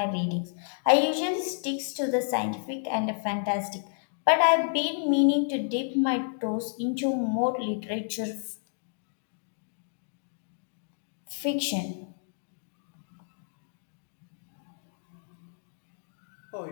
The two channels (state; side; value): silent; right; digital silence